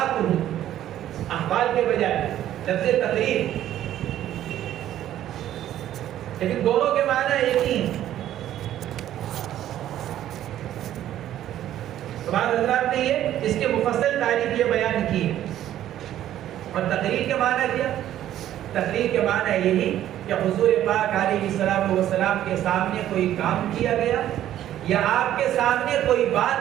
احوال کے بجائے لفظ تقریر، لیکن دونوں کے معنی ایک ہی ہیں۔ بعض حضرات نے یہ اس کے مفصل تعریف یہ بیان کی ہے۔ اور تقریر کے معنی کیا؟ تقریر کے معنی یہی کہ حضور پاک علیہ الصلوۃ والسلام کے سامنے کوئی کام کیا گیا یا آپ کے سامنے کوئی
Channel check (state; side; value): quieter; left; 12.1 dB